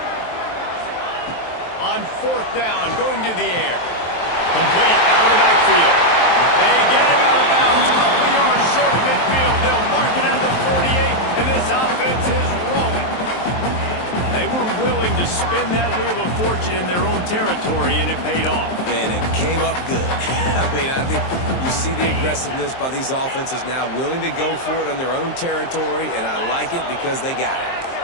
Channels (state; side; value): late; right; 23 ms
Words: On 4th down, going to the air. Complete out of the backfield. They get him out of bounds. Couple yards short of midfield. They'll mark it at the 48, and this offense is rolling. They were willing to spin that wheel of fortune in their own territory, and it paid off. And it came up good. I mean, I think you see the aggressiveness by these offenses now, willing to go for it on their own territory, and I like it because they got it.